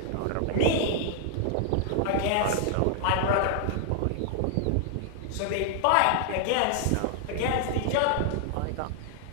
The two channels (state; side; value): different; both; correlation -0.01